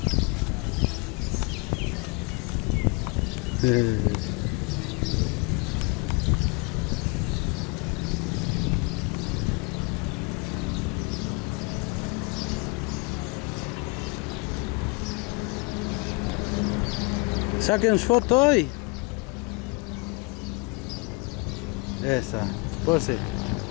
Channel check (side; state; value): right; quieter; 27.8 dB